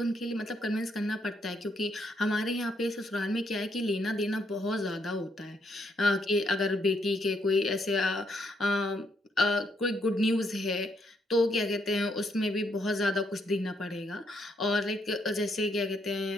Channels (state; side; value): normal; both; correlation 0.74